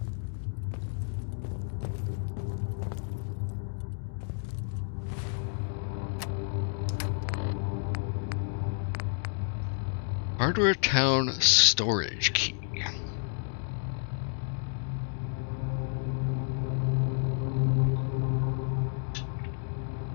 Hardware Town storage key.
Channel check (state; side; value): silent; right; 57 dB below the other